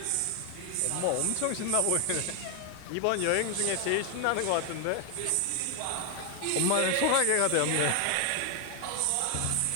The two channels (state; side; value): different; both; correlation 0.00